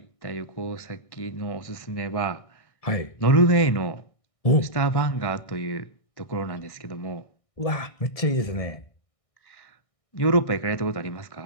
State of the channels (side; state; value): right; late; 1.6 ms